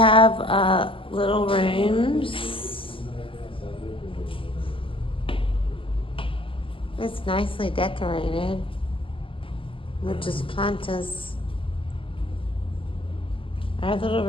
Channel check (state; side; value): late; right; 0.25 ms